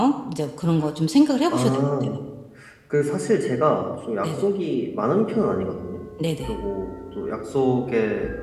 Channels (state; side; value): identical; both; correlation 1.00